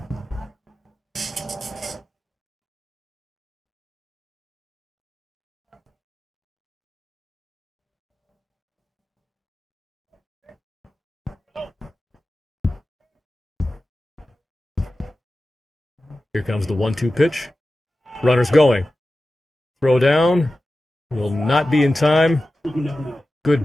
Here comes the 1-2 pitch. Runner's going. Throw down. Will not be in time. Good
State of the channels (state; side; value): normal; both; correlation 0.94